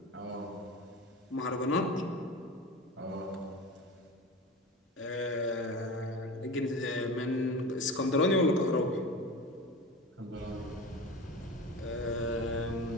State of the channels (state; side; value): normal; both; correlation 0.30